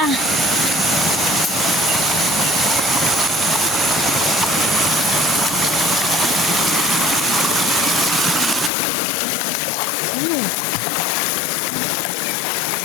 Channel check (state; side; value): drops out; right; at 8.7 s